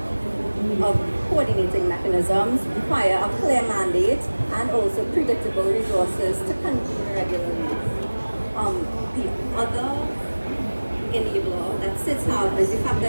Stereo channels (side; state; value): both; inverted; correlation -1.00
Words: coordinating mechanisms require a clear mandate and also predictable resources to convene regularly. The other enabler that SIDS have is the fact